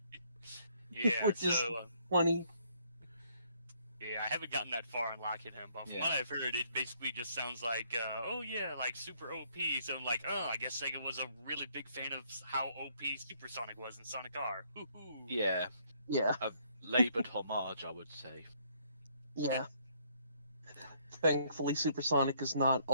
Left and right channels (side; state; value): both; inverted; correlation -0.67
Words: Yeah. Which is- So. Funny. Yeah, I haven't gotten that far in locking him, but from Yeah. what I've heard, it basically just sounds like, oh yeah, like super OP. So I'm like, oh, I guess Sega was a really big fan of how OP Supersonic was in Sonic R. Woohoo! Yeah. Yeah, Laboured homage, I would say. yeah. Thankfully, Supersonic is not